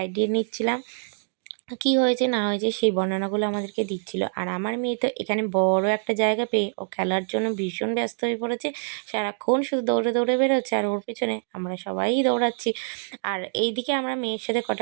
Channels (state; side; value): silent; left; 61 dB below the other